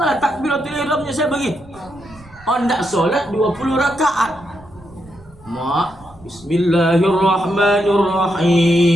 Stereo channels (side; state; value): right; noise; rumble, 24 dB below the sound